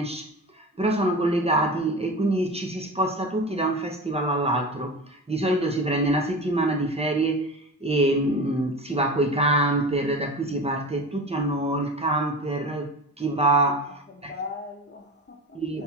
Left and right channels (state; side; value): normal; both; correlation 0.30